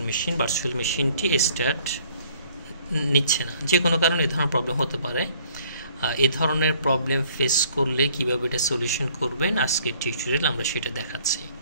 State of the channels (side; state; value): both; inverted; correlation -0.59